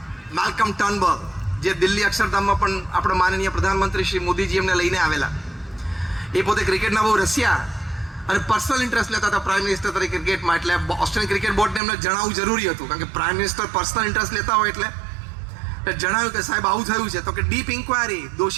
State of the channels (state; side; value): drops out; left; at 11.8 s